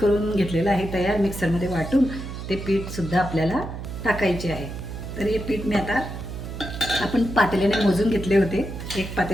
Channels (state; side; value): noise; right; hum, 8 dB below the sound